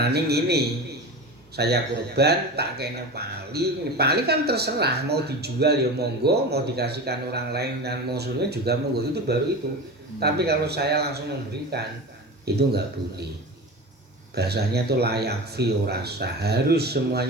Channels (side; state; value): both; normal; correlation 0.29